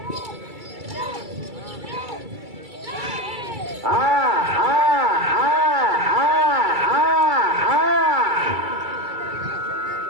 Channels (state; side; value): late; left; 2.3 ms